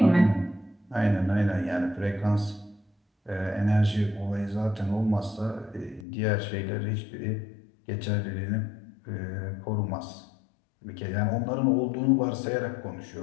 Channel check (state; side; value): drops out; right; at 6.1 s